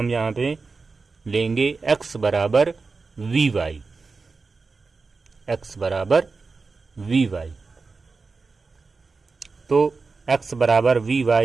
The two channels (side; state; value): left; quieter; 4.3 dB